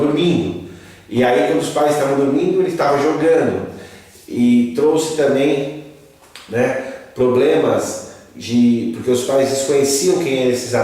E aí, quando os pais estavam dormindo, ele estava jogando. E trouxe também, né, problemas porque os pais desconheciam quem eram esses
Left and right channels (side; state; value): both; identical; correlation 1.00